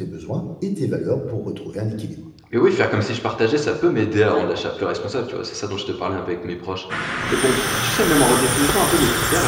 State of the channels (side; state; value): both; identical; correlation 1.00